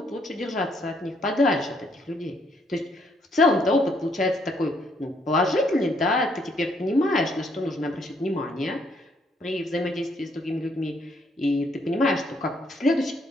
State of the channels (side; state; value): both; normal; correlation 0.70